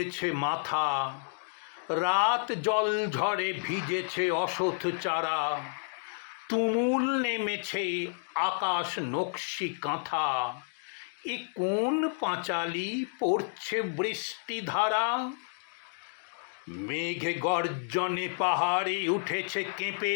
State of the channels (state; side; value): silent; right; digital silence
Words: মাথা, রাত জল ঝড়ে ভিজেছে অসথ চারা, তুমুল নেমেছে আকাশ নকশি কাঁথা। এ কোন পাঁচালি পড়ছে বৃষ্টি ধারা? মেঘ গর্জনে পাহাড়ে উঠেছে কেঁপে,